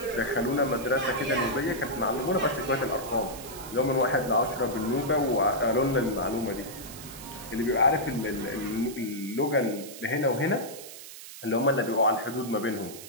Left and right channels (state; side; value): noise; right; hiss, 14 dB below the sound